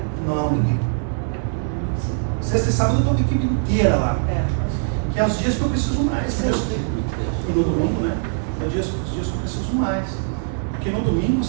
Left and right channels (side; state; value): left; silent; digital silence